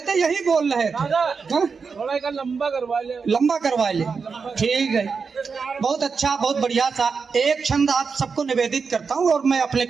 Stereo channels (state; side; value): quieter; left; 5.3 dB